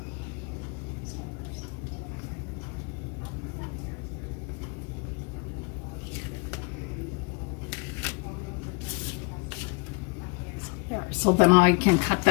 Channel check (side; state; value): right; quieter; 30.3 dB